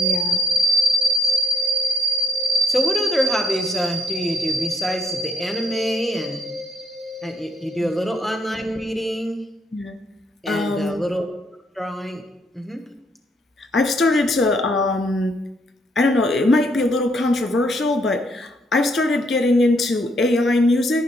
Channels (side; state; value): both; normal; correlation 0.70